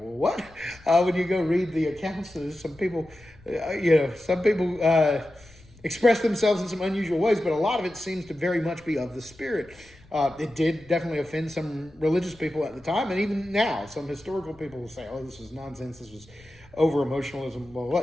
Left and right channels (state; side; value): noise; left; rumble, 25 dB below the sound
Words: what? When you go read the accounts, some people, express themselves in some unusual ways, but a lot of it seems to very much be of the Spirit. It did definitely offend some religious people at the time, and even now, some historical people will say, oh, this was nonsense, this was over-emotionalism.